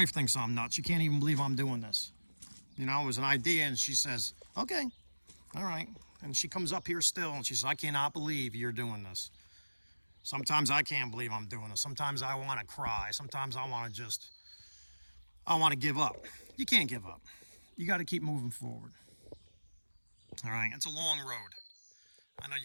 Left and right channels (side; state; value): both; inverted; correlation -1.00